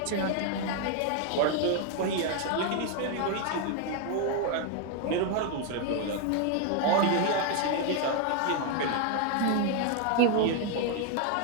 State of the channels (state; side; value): different; both; correlation 0.01